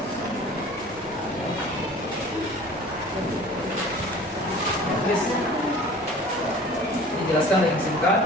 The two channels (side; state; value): both; normal; correlation 0.45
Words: Please. Dijelaskan dengan singkat